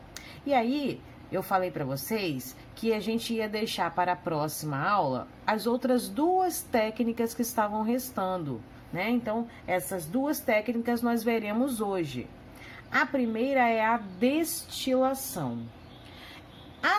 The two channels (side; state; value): both; identical; correlation 1.00